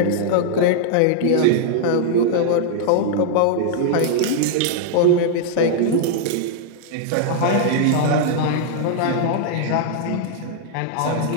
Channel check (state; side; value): different; both; correlation -0.01